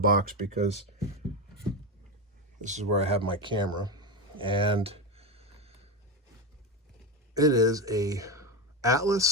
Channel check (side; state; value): both; normal; correlation 0.14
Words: because this is where I have my camera. And it is a